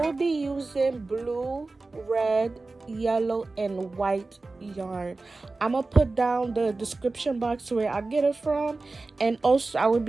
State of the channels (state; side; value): quieter; left; 3.5 dB